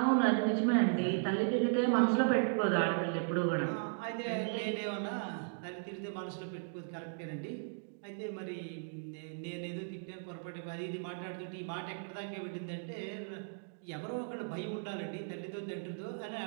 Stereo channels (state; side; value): silent; left; digital silence